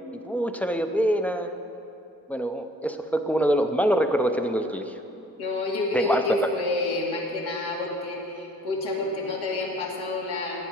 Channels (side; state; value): both; normal; correlation 0.57